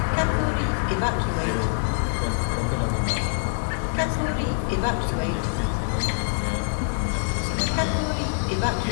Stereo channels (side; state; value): right; silent; digital silence